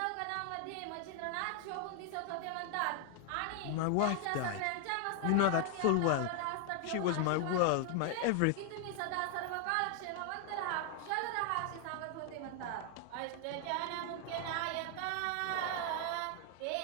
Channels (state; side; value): different; both; correlation 0.00